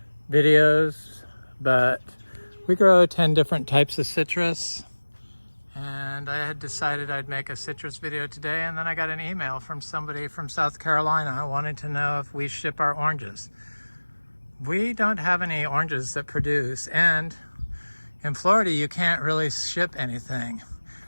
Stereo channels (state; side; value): inverted; both; correlation -1.00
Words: videos, but we grow 10 different types of citrus. And I had decided I'd make a citrus video today, and then I got an email from somebody from South Carolina wanting to know if we ship our oranges. We don't have any oranges that produce, and in Florida you can't really ship anything